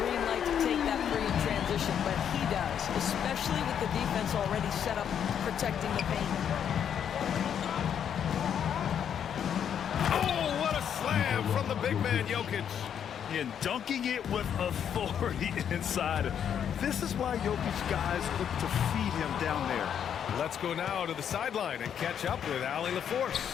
light to take that 3 in transition. transition, but he does, especially with the defense already set up protecting the paint. Oh, what a slam from the big man, Jokic. And dunking it with authority inside. This is why Jokic guys look to feed him down there. Let's go now to the sideline and catch up with Allie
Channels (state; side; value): quieter; right; 8.6 dB